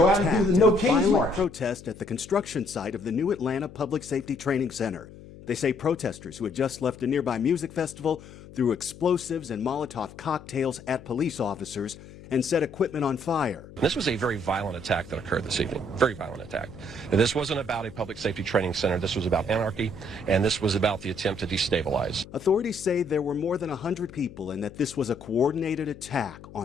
out and do the No Kings March. Protest at the construction site of the new Atlanta Public Safety Training Center. They say protesters who had just left a nearby music festival threw explosives and Molotov cocktails at police officers and set equipment on fire. This was a very violent attack that occurred this evening. Very violent attack. And this wasn't about a public safety training center. This was about anarchy, and this was about the attempt to destabilize. Authorities say there were more than 100 people and that this was a coordinated attack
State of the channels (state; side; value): noise; left; hum, 18 dB below the sound